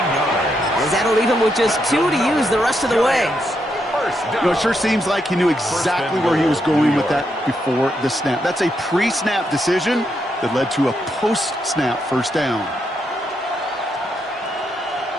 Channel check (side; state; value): both; normal; correlation 0.80